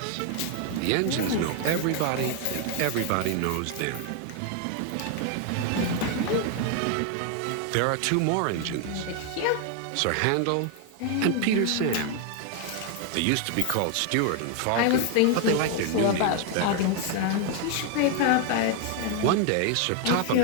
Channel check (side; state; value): both; different; correlation 0.01